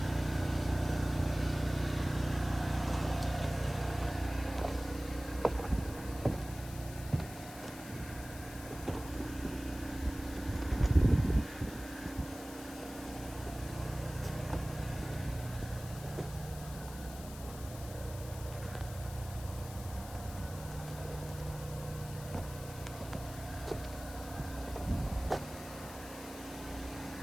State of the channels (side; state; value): left; noise; hiss, 14 dB below the sound